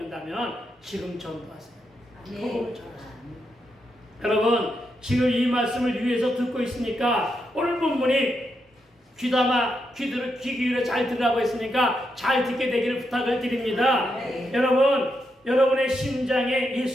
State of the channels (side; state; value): both; normal; correlation 0.83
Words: 지금 전도하세요. 복음을 전하세요. 여러분 지금 이 말씀을 위해서 듣고 있으니까 오늘 본문이 귀 기울여 잘 들으라고 했으니까 잘 듣게 되기를 부탁을 드립니다. 여러분 여러분의 심장에